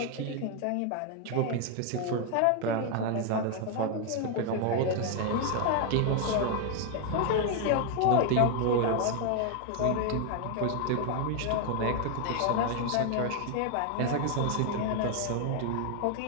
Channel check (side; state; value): both; different; correlation 0.00